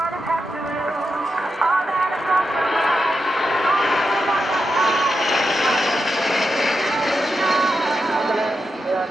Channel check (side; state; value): both; normal; correlation 0.87